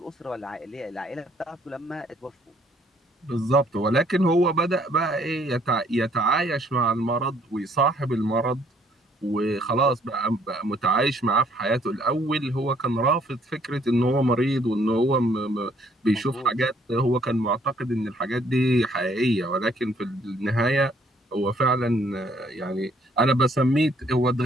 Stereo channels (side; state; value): both; normal; correlation 0.64